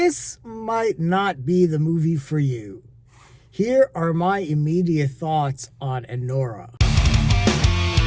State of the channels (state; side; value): identical; both; correlation 1.00